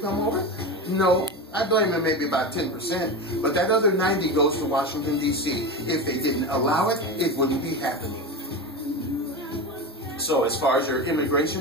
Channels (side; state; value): both; normal; correlation 0.22